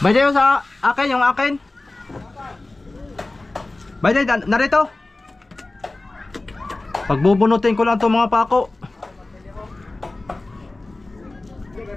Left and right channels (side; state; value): right; quieter; 3.0 dB